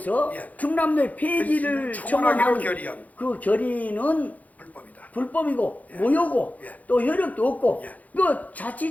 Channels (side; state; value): right; late; 0.076 ms